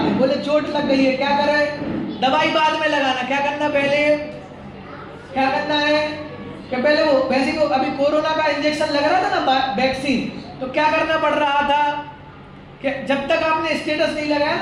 हैं। बोले चोट लग गई है, क्या करें? दवाई बाद में लगाना, क्या करना पहले, क्या करना है कि पहले वो वैसे को अभी कोरोना का इंजेक्शन लग रहा था ना, वैक्सीन, तो क्या करना पड़ रहा था कि जब तक आपने स्टेटस नहीं लगाया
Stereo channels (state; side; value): identical; both; correlation 1.00